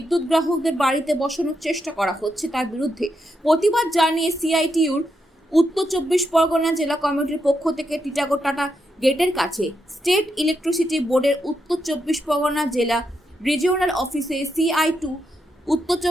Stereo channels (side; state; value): both; normal; correlation 0.83